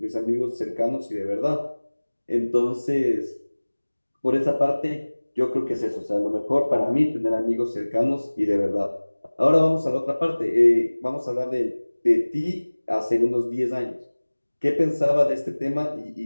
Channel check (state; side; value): inverted; both; correlation -1.00